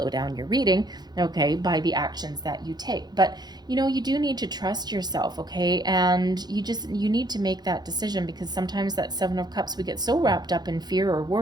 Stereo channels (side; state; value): left; late; 0.20 ms